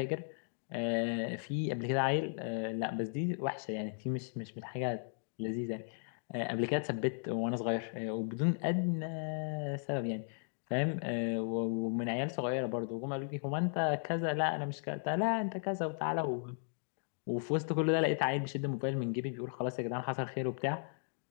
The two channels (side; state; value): right; silent; digital silence